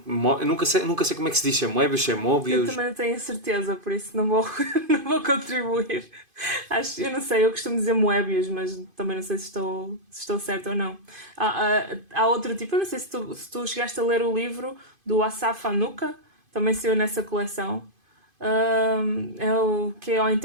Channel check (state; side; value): late; left; 2.5 ms